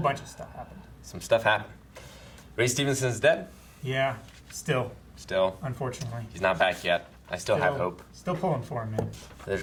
stuff happened. Some stuff happened. Ray Stevenson's dead. Yeah, still, unfortunately. He's not back yet. I still have hope. Still pulling for him, man. There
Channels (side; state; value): both; identical; correlation 1.00